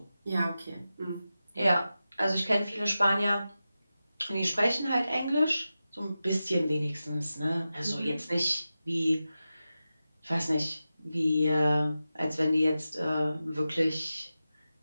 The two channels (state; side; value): inverted; both; correlation -0.93